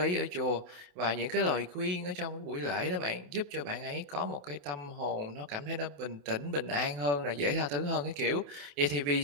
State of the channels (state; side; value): late; left; 28 ms